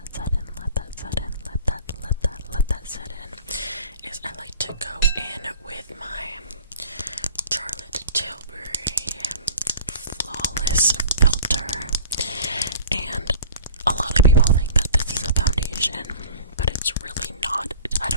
set in, is I like to go in with my Charlotte Tilbury Flawless Filter. And a lot of people think that this is a foundation, but it's really not. I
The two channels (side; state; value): both; inverted; correlation -0.45